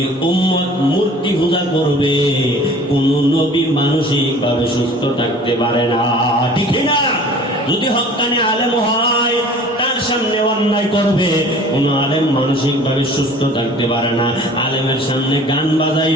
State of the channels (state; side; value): normal; both; correlation 0.47